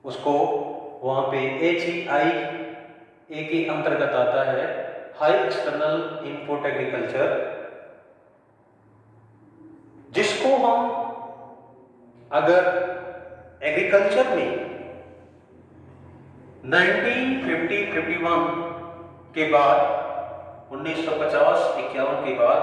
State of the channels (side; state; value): both; identical; correlation 1.00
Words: उसको वहां पे HEIA के अंतर्गत आता है, हाई एक्सटर्नल इनपुट एग्रीकल्चर, जिसको हम अगर एग्रीकल्चर में 1950-51 के बाद 1950-51 के बाद